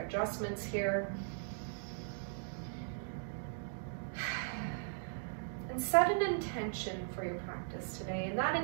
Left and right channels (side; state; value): left; silent; digital silence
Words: adjustments here. And set an intention for your practice today. And that